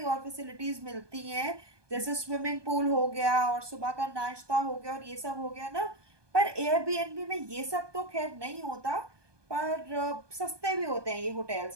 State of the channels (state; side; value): late; left; 1.2 ms